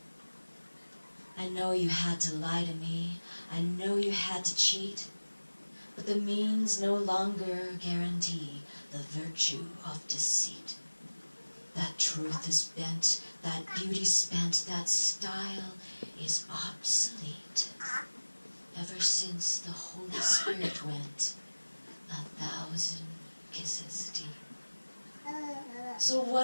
I know you had to lie to me, I know you had to cheat, but the means no longer guarantee the virtue of deceit. That truth is bent, that beauty spent, that style is obsolete. Ever since the Holy Spirit went 1,000 kisses deep. So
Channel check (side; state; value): both; inverted; correlation -1.00